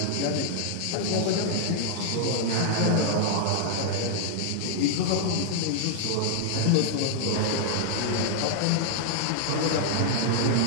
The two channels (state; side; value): different; both; correlation -0.01